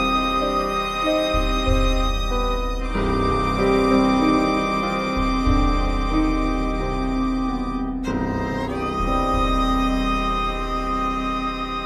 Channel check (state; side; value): identical; both; correlation 1.00